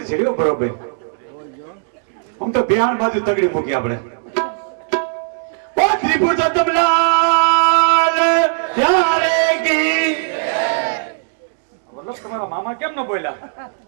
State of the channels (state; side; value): silent; left; digital silence